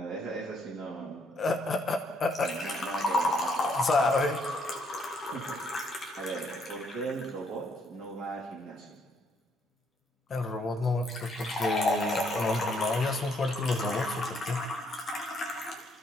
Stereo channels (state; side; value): normal; both; correlation 0.70